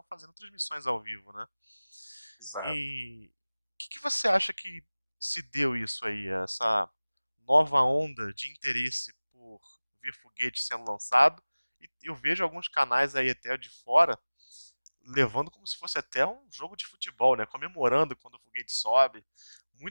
fazendo transmissões ao vivo, né? Exato. E o que você acha que se deu isso aí, essa nova onda de interesse por ver foguete sendo lançado? E eu vejo alguns canais aí até de fora levando como se fosse até um jogo de futebol, né? Comemorando quando o foguete sobe.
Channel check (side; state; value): both; inverted; correlation -1.00